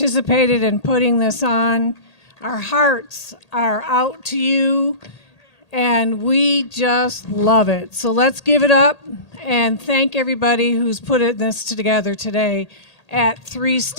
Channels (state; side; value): late; right; 1.8 ms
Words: in putting this on. Our hearts are out to you, and we just love it. So let's give it up and thank everybody who's put this together today at 3